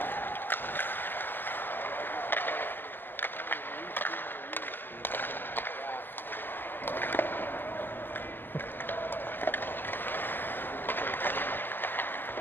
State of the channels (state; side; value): late; right; 0.095 ms